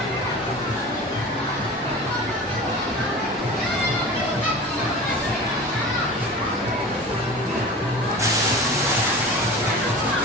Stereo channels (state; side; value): normal; both; correlation 0.36